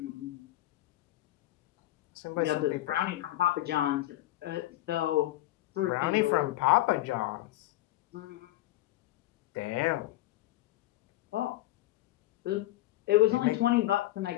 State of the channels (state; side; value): quieter; right; 16.1 dB